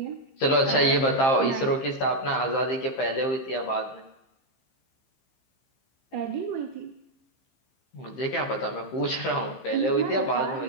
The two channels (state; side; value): late; right; 15 ms